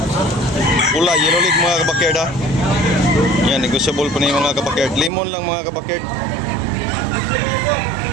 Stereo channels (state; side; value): drops out; left; at 5.1 s